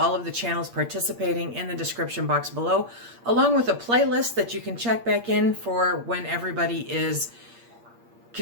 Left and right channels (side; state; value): left; late; 8.6 ms